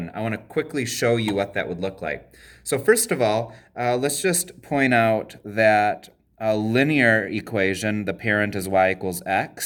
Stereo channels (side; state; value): both; identical; correlation 1.00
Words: I want to quickly show you what that would look like. So first of all, let's just point out that a linear equation, the parent is y equals